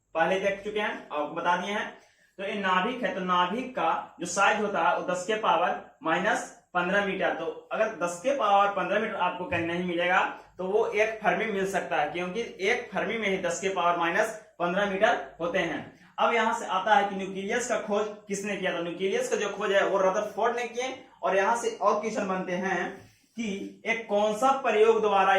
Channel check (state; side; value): identical; both; correlation 1.00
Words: पहले देख चुके हैं, आपको बता दिए हैं। तो ये नाभिक है, तो नाभिक का जो साइज होता है वो 10 के पावर -15 मीटर। तो अगर 10 के पावर 15 मीटर आपको कहीं नहीं मिलेगा तो वो एक फर्मी मिल सकता है, क्योंकि एक फर्मी में ही 10 के पावर -15 मीटर होते हैं। अब यहां से आता है कि न्यूक्लियस का खोज किसने किया, तो न्यूक्लियस का जो खोज है वो रदरफोर्ड ने किए। और यहां से और क्वेश्चन बनते हैं कि एक कौन सा प्रयोग द्वारा